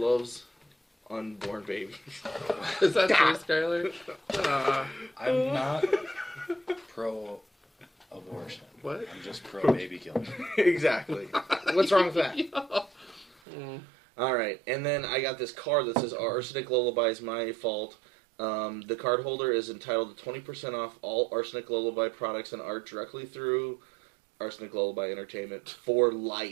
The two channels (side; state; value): left; drops out; at 13.4 s